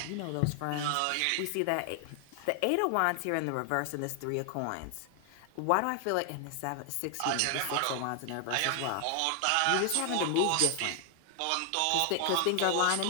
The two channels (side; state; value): both; different; correlation 0.00